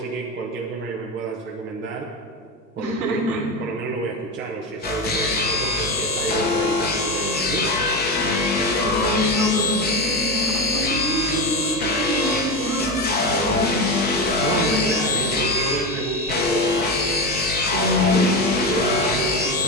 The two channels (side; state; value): both; normal; correlation 0.18